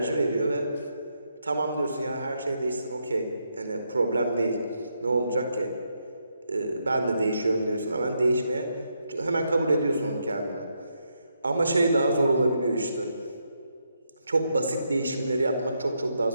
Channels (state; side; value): inverted; both; correlation -0.80